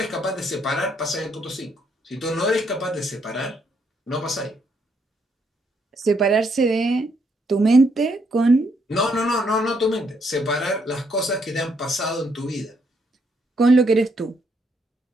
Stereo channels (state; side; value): normal; both; correlation 0.73